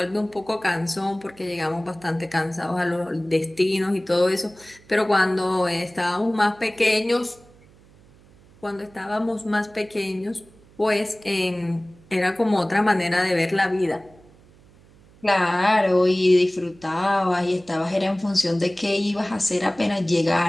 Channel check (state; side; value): noise; right; hum, 27 dB below the sound